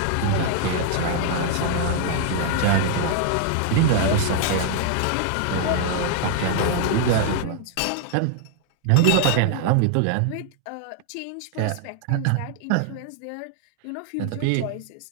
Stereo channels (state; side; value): different; both; correlation 0.00